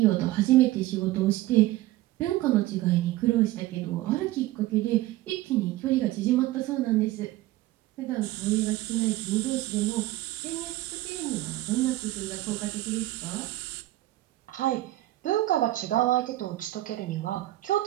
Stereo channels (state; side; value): quieter; left; 16.6 dB